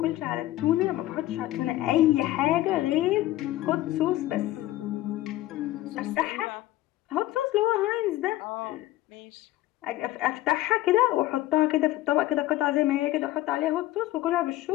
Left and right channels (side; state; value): right; quieter; 15.7 dB